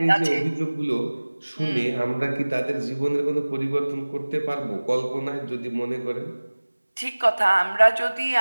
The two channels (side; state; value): both; inverted; correlation -1.00